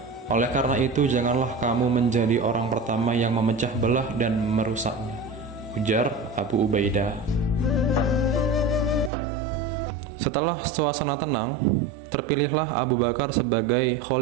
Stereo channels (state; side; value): drops out; left; at 9.1 s